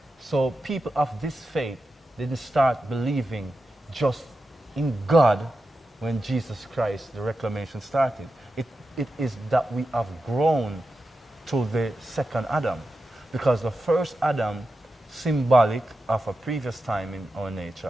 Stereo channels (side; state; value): both; normal; correlation 0.90